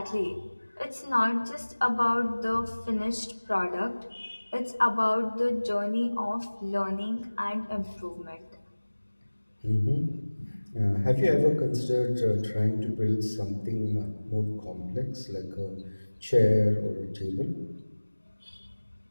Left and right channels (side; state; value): both; inverted; correlation -1.00